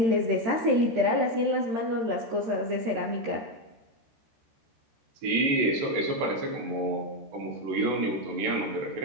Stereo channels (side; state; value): left; late; 13 ms